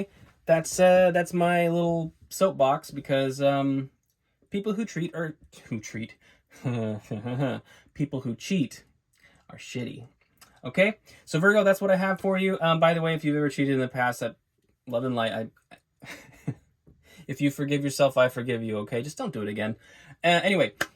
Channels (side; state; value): both; identical; correlation 1.00